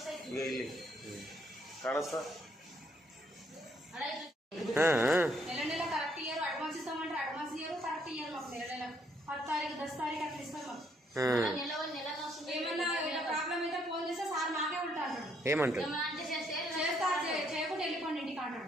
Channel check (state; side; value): normal; both; correlation 0.70